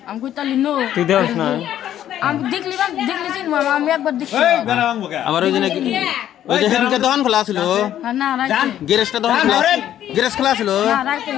আমি কই তাহলে নো তুই দেওস না আমি দেখলি চিনবো আমি একবার দেখছি আমার ওই জন্য ওই যে হেদিনকে দোকান খোলা ছিল হ্যাঁ না রাইতে গ্যারেজটা দোকান খোলা গ্যারেজ খোলা ছিল না রাইতে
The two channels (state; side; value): quieter; right; 11.4 dB